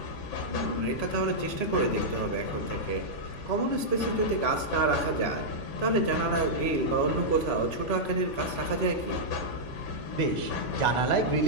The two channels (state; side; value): late; right; 3.5 ms